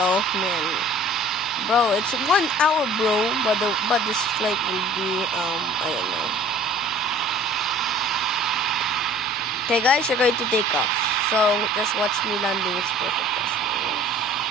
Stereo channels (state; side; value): normal; both; correlation 0.49